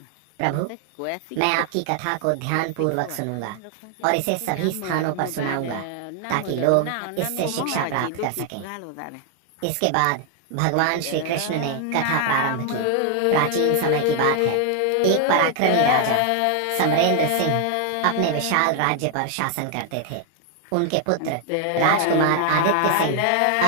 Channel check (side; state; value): both; different; correlation 0.00